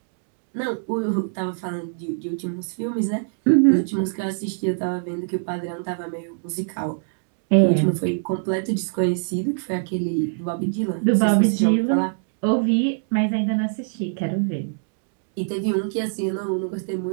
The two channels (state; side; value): silent; left; digital silence